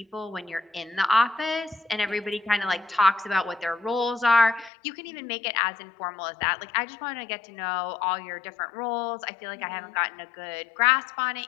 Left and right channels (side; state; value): right; drops out; at 4.7 s